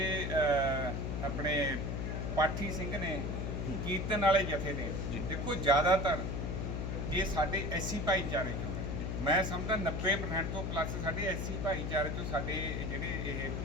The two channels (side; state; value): left; noise; hum, 2 dB below the sound